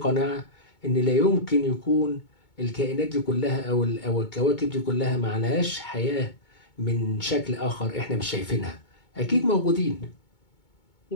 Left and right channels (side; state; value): right; late; 2.2 ms